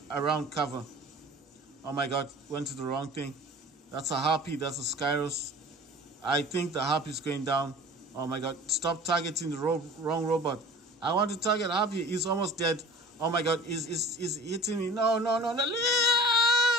around cover. Oh my god, went to the wrong thing. That's a Harpy, that's a Skyros. I think the Harpy is going down. Oh my god, stop targeting the wrong robot. I want to target Harpy. He's almost dead. Oh my god, he's hitting me. No.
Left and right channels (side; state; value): both; normal; correlation 0.43